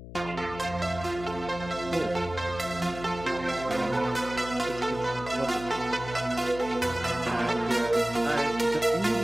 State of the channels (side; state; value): left; noise; hum, 13 dB below the sound